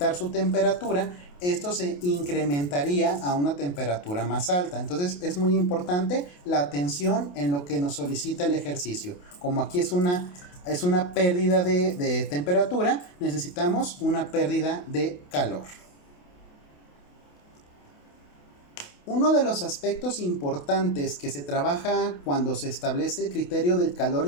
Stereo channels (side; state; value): right; late; 28 ms